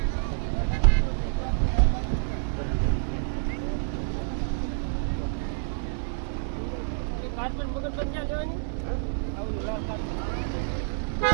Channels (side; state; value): left; silent; digital silence